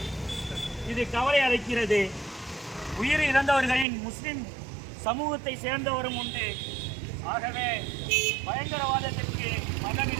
இது கவலை அளிக்கிறது. உயிரிழந்தவர்களின் முஸ்லிம் சமூகத்தை சேர்ந்தவரும் உண்டு. ஆகவே பயங்கரவாதத்திற்கு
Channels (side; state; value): left; drops out; at 3.9 s